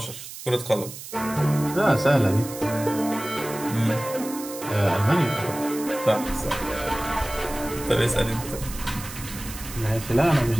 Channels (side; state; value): right; noise; hiss, 12 dB below the sound